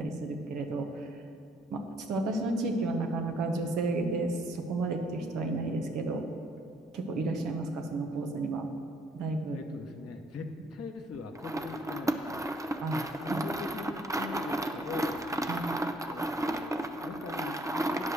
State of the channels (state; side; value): normal; both; correlation 0.64